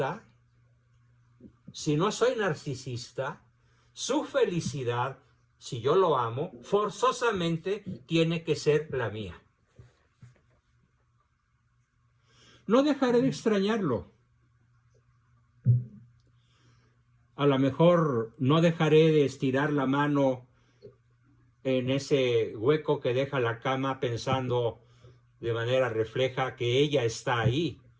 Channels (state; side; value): identical; both; correlation 1.00